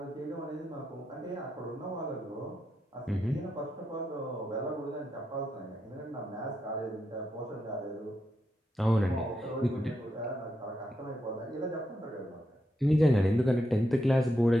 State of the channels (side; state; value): both; normal; correlation 0.83